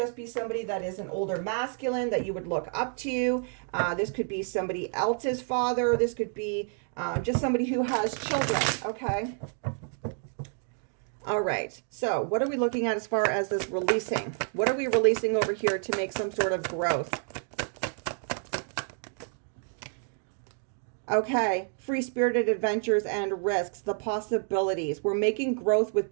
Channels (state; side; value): silent; left; 55 dB below the other